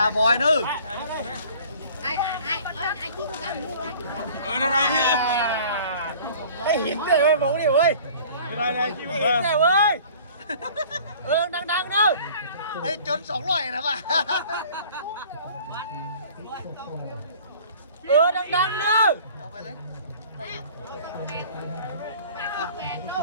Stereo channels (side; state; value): both; inverted; correlation -0.48